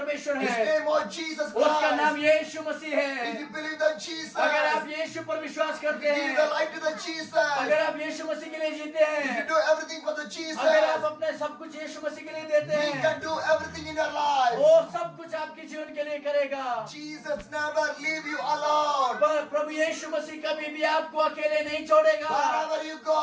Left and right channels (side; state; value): both; identical; correlation 1.00